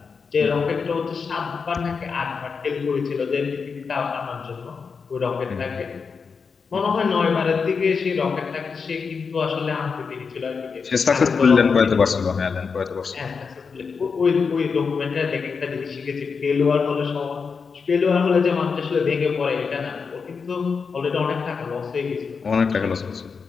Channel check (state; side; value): quieter; right; 5.4 dB